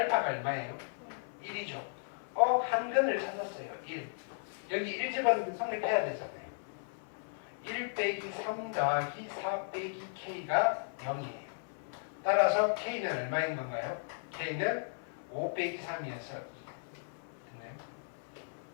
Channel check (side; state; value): right; silent; 54 dB below the other